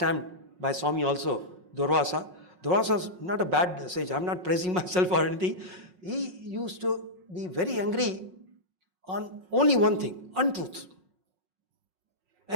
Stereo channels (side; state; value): left; late; 5.5 ms